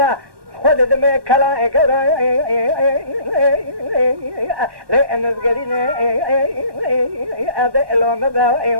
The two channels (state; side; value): late; left; 1.1 ms